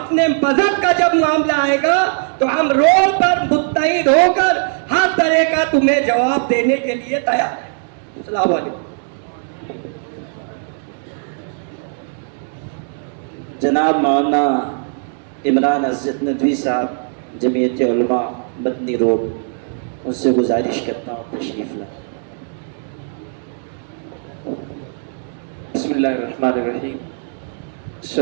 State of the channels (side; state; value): left; silent; 64 dB below the other